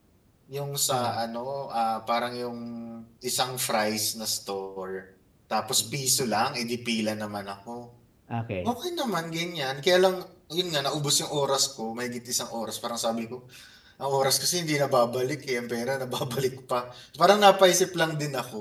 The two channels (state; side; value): identical; both; correlation 1.00